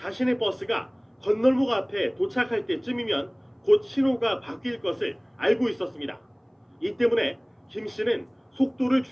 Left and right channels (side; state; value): both; identical; correlation 1.00